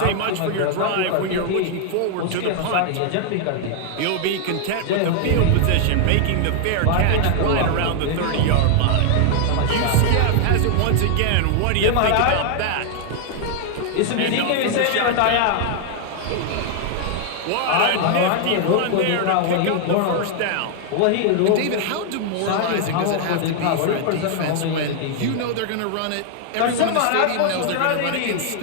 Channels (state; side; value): different; both; correlation 0.00